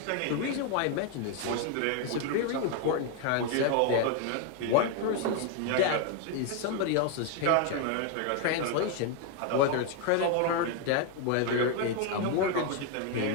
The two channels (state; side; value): different; both; correlation 0.01